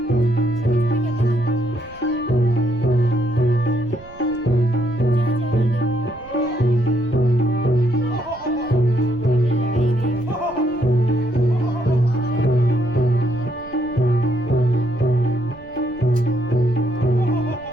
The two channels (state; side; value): noise; right; rumble, 22 dB below the sound